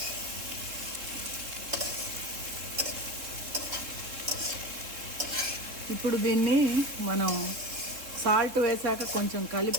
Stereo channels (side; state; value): left; late; 3.8 ms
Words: ఇప్పుడు దీన్ని మనం సాల్ట్ వేసాక కొంచెం